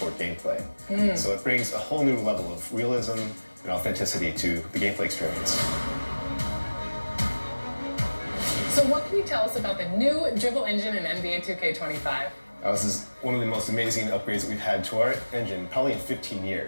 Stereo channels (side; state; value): both; inverted; correlation -1.00